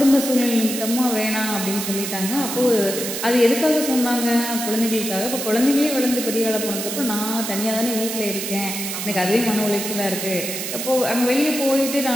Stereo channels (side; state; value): right; noise; hiss, 5 dB below the sound